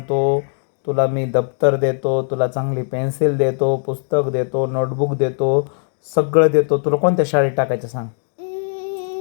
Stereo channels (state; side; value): silent; right; 56 dB below the other